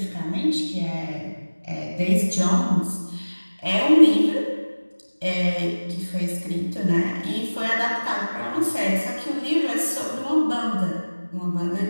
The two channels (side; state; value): both; inverted; correlation -1.00